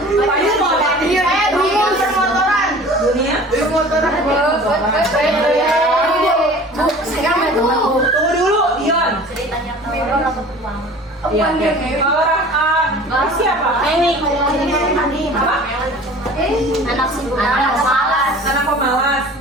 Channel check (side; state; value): both; normal; correlation 0.44